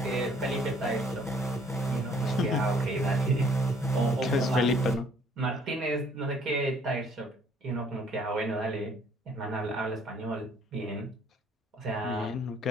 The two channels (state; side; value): normal; both; correlation 0.60